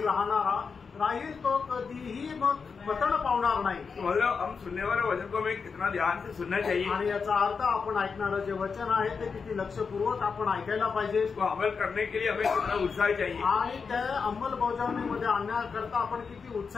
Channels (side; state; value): right; quieter; 5.4 dB